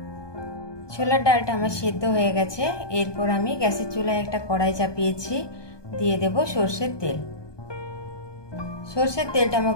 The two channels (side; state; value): right; late; 1.2 ms